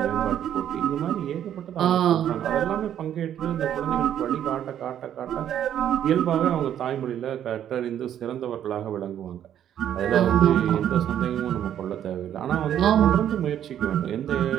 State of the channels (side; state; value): left; quieter; 10.3 dB